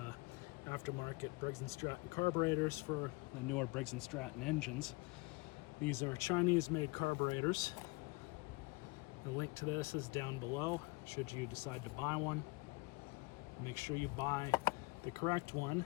aftermarket Briggs & Stratton carburetors for the newer Briggs & Stratton engines. These are Chinese-made carburetors. The link to this is down below should you decide to buy one. Make sure you buy the correct one.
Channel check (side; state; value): right; quieter; 25.8 dB